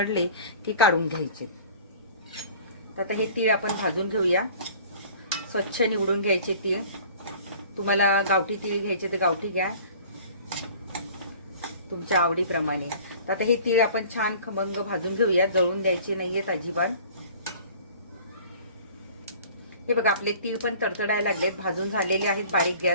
की काढून घ्यायचे. तर आता हे तीळ आपण भाजून घेऊया. स्वच्छ निवडून घ्यायचे तीळ. तुम्हाला गावठी तीळ घ्यायचे तर गावठी घ्या, तुमच्या आवडीप्रमाणे. तर आता हे तीळ आपण छान खमंग भाजून घेऊया. जळून द्यायचे नाहीयेत अजिबात. हे बघा आपले तीळ पण तडतडायला लागलेत, भाजून झालेले आहेत बारीक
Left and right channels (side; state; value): both; inverted; correlation -0.47